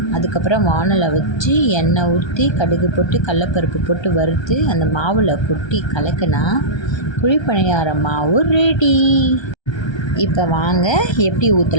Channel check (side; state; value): right; late; 1.3 ms